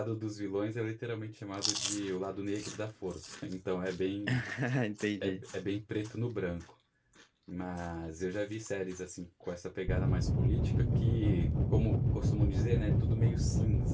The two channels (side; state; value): both; identical; correlation 1.00